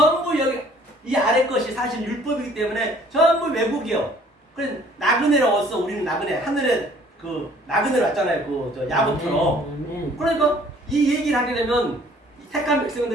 여기 이 아래 것이 사실 율법이기 때문에 전부 외국이요. 그래서 나그네로 왔어. 우리는 나그네 하늘에 그 나그네로 왔잖아요. 그 저 야곱처럼. 그러니까 이 얘기를 하게 되면 택한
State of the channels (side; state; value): both; normal; correlation 0.56